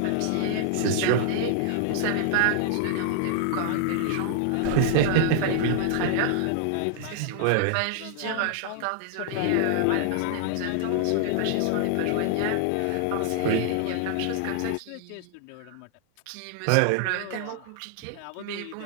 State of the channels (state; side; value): different; both; correlation -0.01